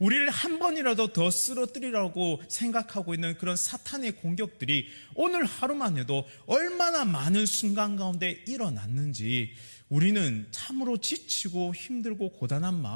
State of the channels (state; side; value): inverted; both; correlation -1.00